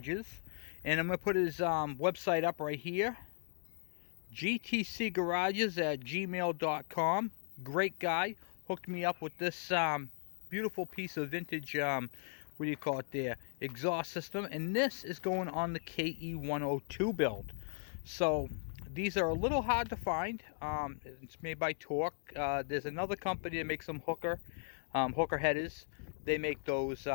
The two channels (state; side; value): silent; right; 53 dB below the other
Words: and I'm going to put his website up right here, gtcgarages@gmail.com. Great guy, hooked me up with this beautiful piece of vintage, exhaust system, and this is going on the KE102 build. So these are a little hard to find. It's made by Torque. There's another company that makes some hooker headers. They make those